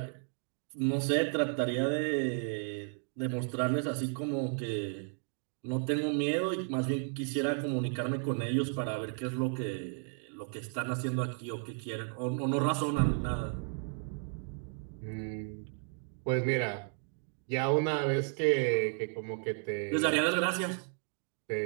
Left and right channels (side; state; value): left; silent; 55 dB below the other